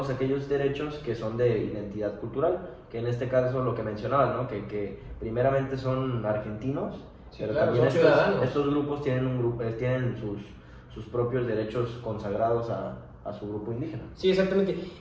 aquellos derechos que son de identidad cultural, que en este caso lo que mencionabas, ¿no? que primeramente son argentinos, Sí, pero claro, también son ciudadanos. estos grupos tienen sus propios derechos consagrados a su grupo indígena. Sí, exactamente.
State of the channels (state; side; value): identical; both; correlation 1.00